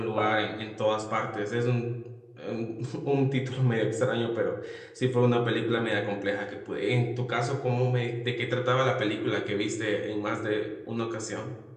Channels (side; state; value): both; identical; correlation 1.00